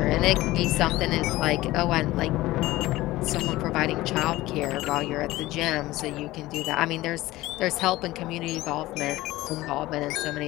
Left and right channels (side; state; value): right; quieter; 17.7 dB